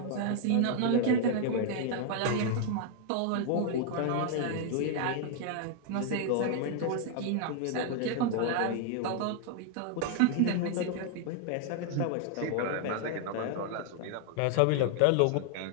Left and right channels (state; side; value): different; both; correlation 0.00